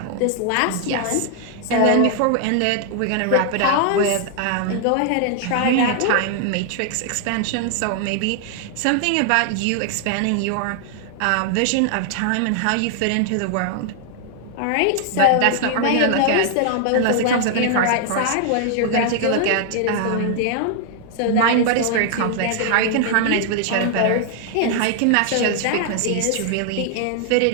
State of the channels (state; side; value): different; both; correlation 0.00